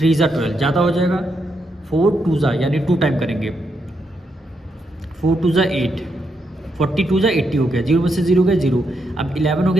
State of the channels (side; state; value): both; normal; correlation 0.80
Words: जा 12 ज़्यादा हो जाएगा, 4 2 जा यानी 2 टाइम करेंगे, 4 2 जा 8, 42 जा 80 हो गया, 0 में से 0 गया 0, अब 11 हो